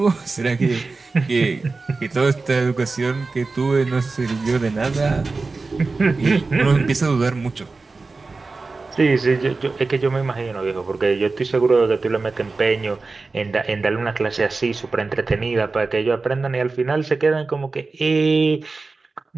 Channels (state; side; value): quieter; left; 3.9 dB